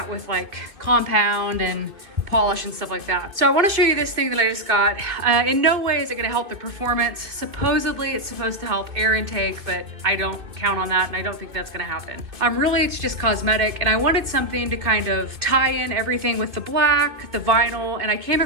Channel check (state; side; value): late; left; 2.6 ms